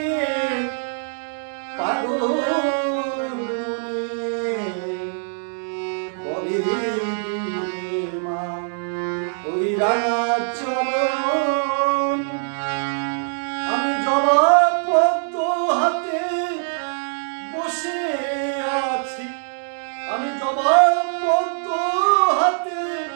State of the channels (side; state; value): left; silent; 64 dB below the other